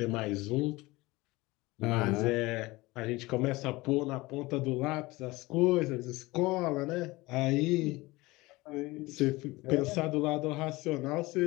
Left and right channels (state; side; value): quieter; right; 21.2 dB